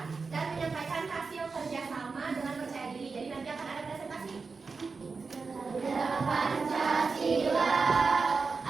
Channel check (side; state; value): left; quieter; 4.6 dB